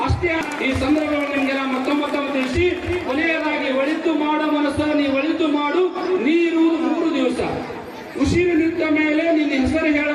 ಅಷ್ಟೇ ಈ ಸಂದರ್ಭದಲ್ಲಿ ನಿಮ್ಗೆಲ್ಲ ಮತ್ತೊಮ್ಮೆ ತಿಳಿಸಿ ಕೊನೆಯದಾಗಿ ಒಳಿತು ಮಾಡೋ ಮನಸ್ಸು ನೀ ಒಳಿತು ಮಾಡು, ನೀರುವುದು 3 ದಿವಸ. ಉಸಿರು ನಿಂತ ಮೇಲೆ ನಿನ್ನ ಹೆಸರು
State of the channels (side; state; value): both; identical; correlation 1.00